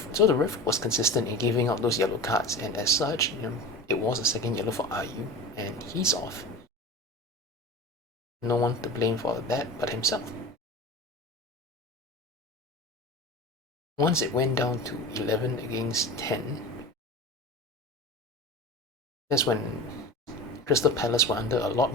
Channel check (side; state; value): both; normal; correlation 0.33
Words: ref was consistent in giving out those yellow cards, and as such, it was a second yellow for Ayu, and he's off. No one to blame for that but himself. Once it went down to 11 against 10, that's when Crystal Palace were under a lot